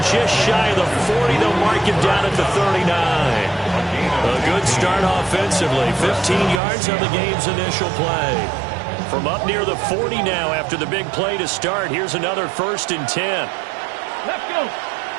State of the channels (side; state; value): left; drops out; at 6.6 s